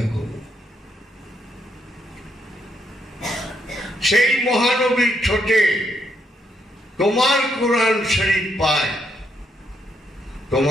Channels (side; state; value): both; normal; correlation 0.76